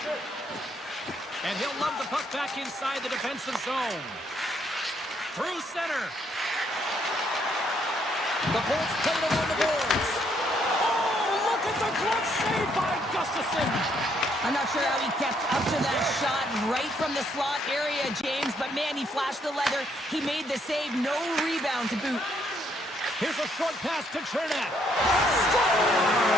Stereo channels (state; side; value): normal; both; correlation 0.71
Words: And he'll lob the puck back inside the defensive zone. Through center. The Bolts play it along the boards. Oh, look at the glove save by Gustafsson. I'm not sure how he kept up to that shot right from the slot area, James, but man, he flashed the leather. He made the save, no rebound to boot. Here's a short pass to Chernak.